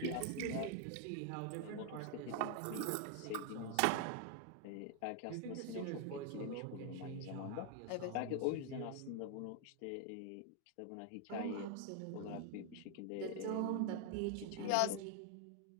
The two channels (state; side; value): different; both; correlation 0.00